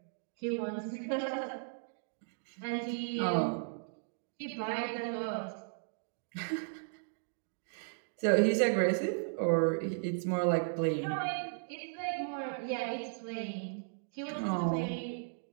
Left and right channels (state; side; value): silent; left; digital silence